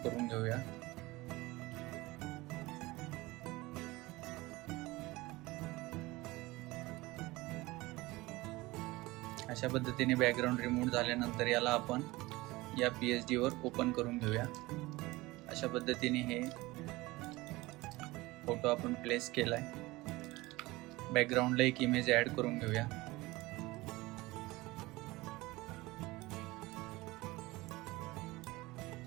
करून घेऊया. अशा पद्धतीने बॅकग्राऊंड रिमूव्ह झाल्यानंतर याला आपण या PhD वर ओपन करून घेऊया. अशा पद्धतीने हे फोटो आपण प्लेस केलाय. बॅकग्राऊंडला एक इमेज ॲड करून घेऊया.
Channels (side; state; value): left; quieter; 20.7 dB